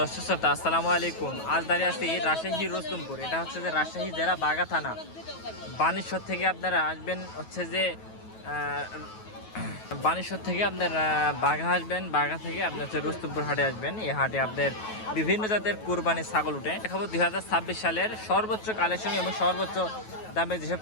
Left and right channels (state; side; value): late; right; 9.3 ms